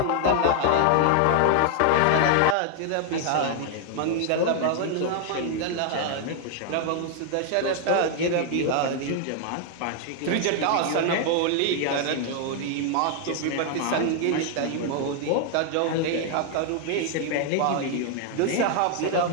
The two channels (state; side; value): different; both; correlation 0.00